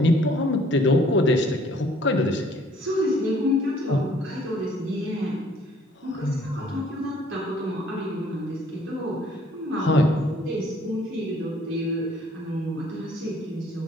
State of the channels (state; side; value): normal; both; correlation 0.59